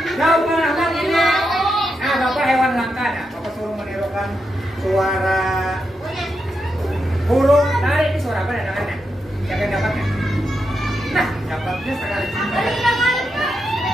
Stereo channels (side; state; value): both; normal; correlation 0.85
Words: Jawaban Ahmad ini. Nah, Bapak hewan langka. Nah, Bapak suruh menirukan suara burung. Nah, ini suara apa? Dengarnya. Siapa yang dapatnya? Nah, dapatnya sekali.